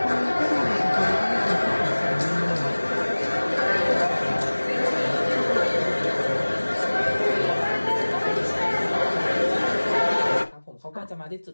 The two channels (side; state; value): both; inverted; correlation -1.00